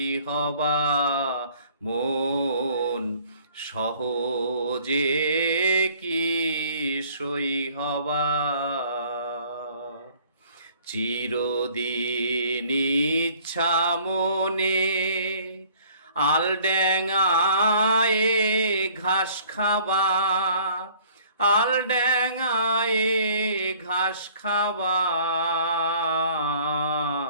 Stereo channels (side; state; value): both; inverted; correlation -0.56